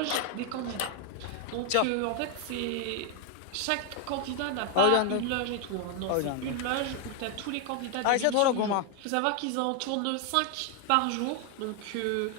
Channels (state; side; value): different; both; correlation 0.00